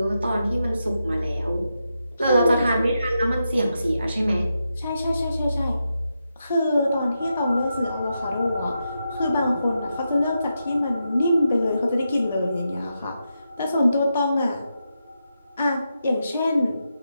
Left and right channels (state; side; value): inverted; both; correlation -0.86